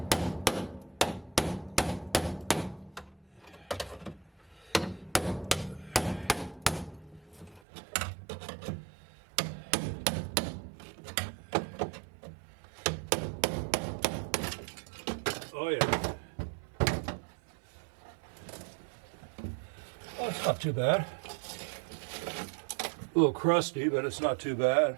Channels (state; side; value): drops out; left; at 7.6 s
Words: Oh yeah. Oh, it's not too bad. A little crusty, but it's not too bad.